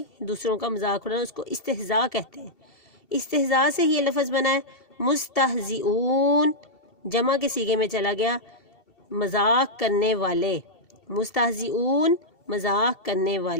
دوسروں کا مذاق اڑانا، اس کو استہزاء کہتے ہیں۔ استہزاء سے ہی یہ لفظ بنا ہے۔ مستہزئون جمع کے صیغے میں چلا گیا، مذاق کرنے والے، مستہزئون مذاق کرنے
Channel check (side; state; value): right; late; 2.7 ms